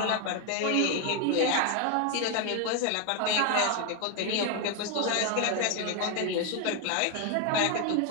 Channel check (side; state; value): both; different; correlation 0.01